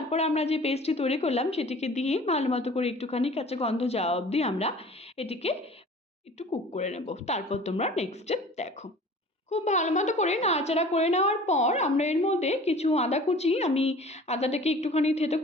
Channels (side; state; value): both; normal; correlation 0.45